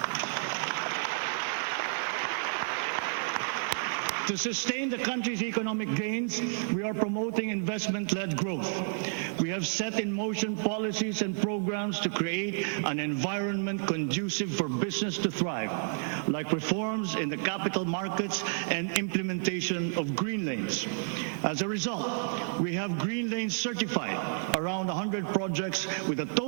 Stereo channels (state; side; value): silent; left; digital silence